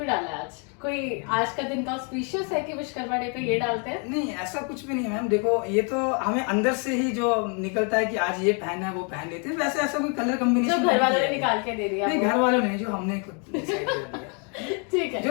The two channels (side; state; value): right; quieter; 37.1 dB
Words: डाला है आज? कोई आज का दिन का ऑस्पिशियस है कि विश्वकर्मा डे पे ये डालते हैं? नहीं, ऐसा कुछ भी नहीं है मैम। देखो, ये तो हमें अंदर से ही जो निकलता है कि आज ये पहनना है, वो पहन लेते हैं। वैसे ऐसा कोई कलर जो कॉम्बिनेशन घर वालों ने निकाल के दे दिया? नहीं, घर वालों ने, जो हमने खुद decide कर लिया। ठीक है,